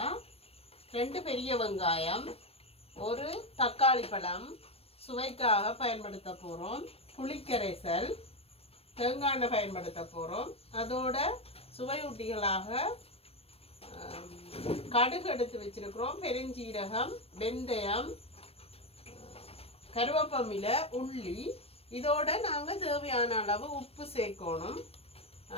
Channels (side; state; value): right; late; 0.28 ms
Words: 2 பெரிய வெங்காயம், ஒரு தக்காளி பழம் சுவைக்காக பயன்படுத்த போகிறோம், புளிக்கரைசல், தேங்காய் எண்ணெய் பயன்படுத்த போகிறோம். அதோட சுவையூட்டிகளாக கடுகு எடுத்து வச்சிருக்கிறோம், பெருஞ்சீரகம், வெந்தயம், கருவேப்பிலை, உள்ளி. இதோட நாங்கள் தேவையான அளவு உப்பு சேர்க்கணும்.